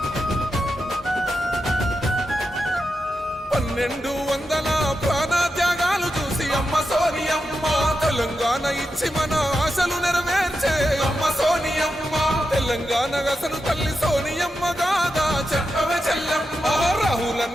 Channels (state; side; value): normal; both; correlation 0.88